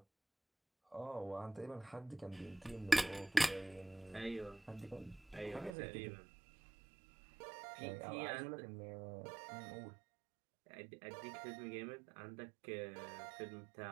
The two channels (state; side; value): drops out; left; at 5.8 s